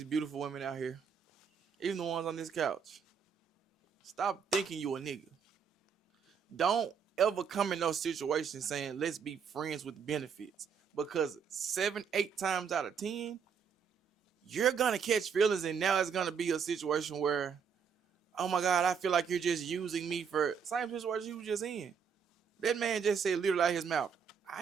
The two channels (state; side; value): quieter; left; 6.7 dB